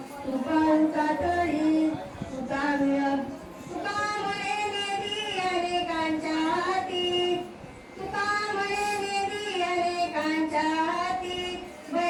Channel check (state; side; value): identical; both; correlation 1.00